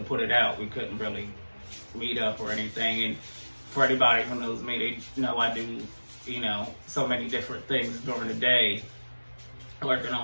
put it out, we couldn't really meet up or anything. And for anybody who knows me, they know I do, you know, so many different things during the day, working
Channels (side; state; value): both; inverted; correlation -1.00